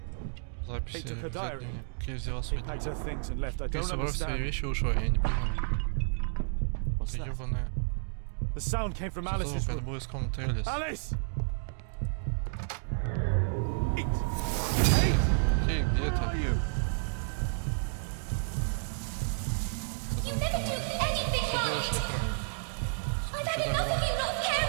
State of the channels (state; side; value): silent; left; digital silence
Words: Записи в дневник. Кей взяла свой Packed her things and left. I Кей don't собрал свои understand. вещи и ушел, я не понимаю. What's that? Ёбаная. The sound came from Alice's Это room. было из комнаты Элис. Alice! Кей, где ты? You never do anything right. I've had enough of you not